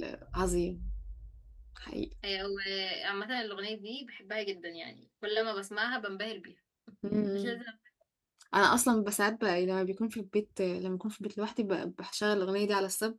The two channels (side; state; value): both; identical; correlation 1.00